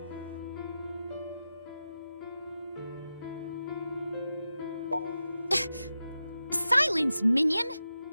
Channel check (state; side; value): inverted; both; correlation -0.91